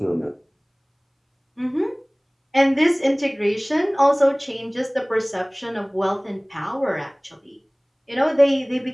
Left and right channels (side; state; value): both; identical; correlation 1.00